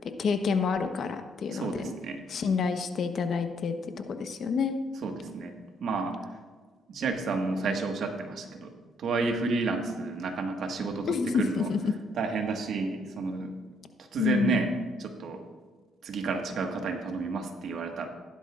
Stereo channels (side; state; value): both; normal; correlation 0.68